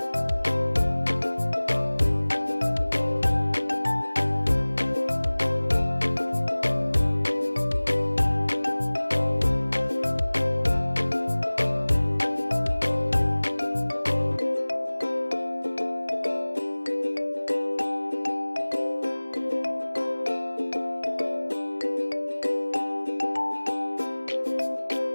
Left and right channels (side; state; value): both; inverted; correlation -1.00